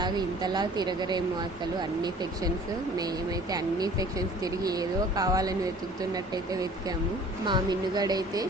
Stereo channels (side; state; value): both; normal; correlation 0.49